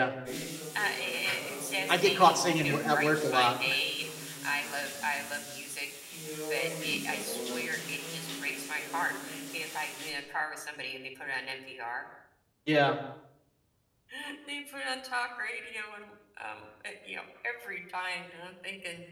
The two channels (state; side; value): identical; both; correlation 1.00